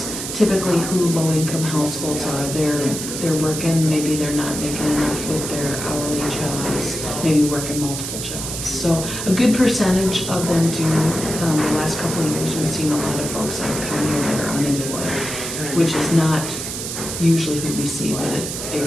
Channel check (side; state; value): right; noise; hiss, 6 dB below the sound